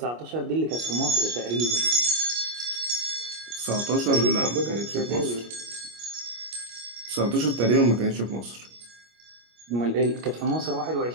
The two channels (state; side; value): late; left; 25 ms